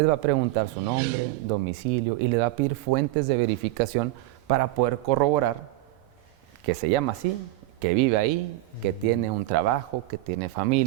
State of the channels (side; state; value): left; quieter; 17.5 dB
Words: va a preguntar su nombre, domicilio y les va a pedir fuentes de verificación para poder corroborar que se llama así, que vive ahí, que tiene un trabajo, que tiene